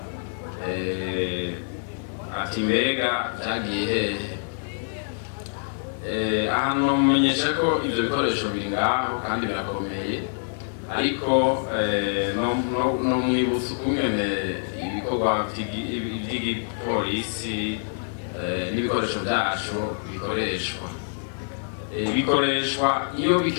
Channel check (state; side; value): silent; right; digital silence